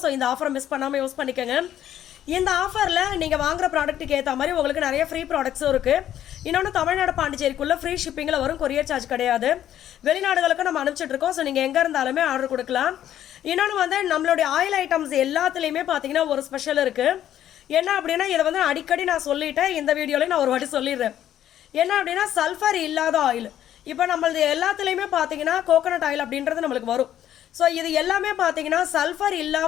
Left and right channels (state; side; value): quieter; right; 11.3 dB